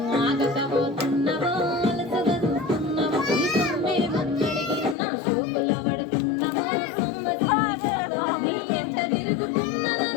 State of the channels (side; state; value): right; drops out; at 5.0 s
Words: ఆగకపోతున్నావో అలసగా చూస్తున్నావో ఈ సొమ్మిడి గొంతడిగి నా సోకుల పడుతున్నావో నీ ఎంత